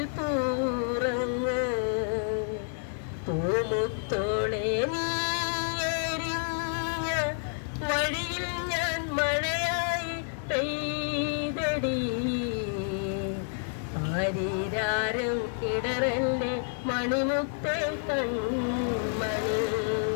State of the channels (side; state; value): right; silent; digital silence